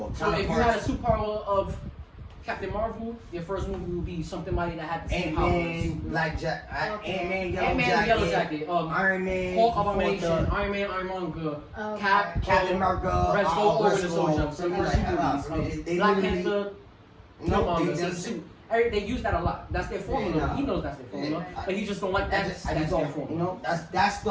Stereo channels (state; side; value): identical; both; correlation 1.00